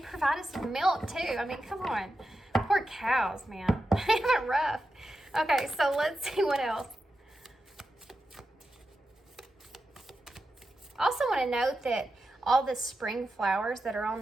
us with milk too. I mean, come on. Poor cows, man. They have it rough. Okay, so let's see what else. I also want to note that all the spring flowers that are on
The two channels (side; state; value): both; normal; correlation 0.90